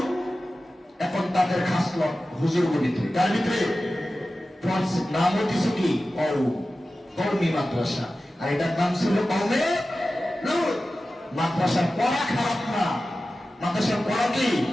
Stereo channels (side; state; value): both; normal; correlation 0.95